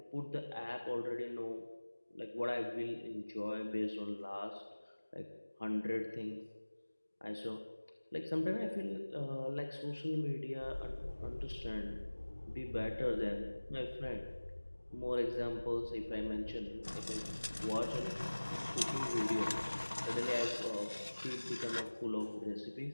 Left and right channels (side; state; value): both; inverted; correlation -1.00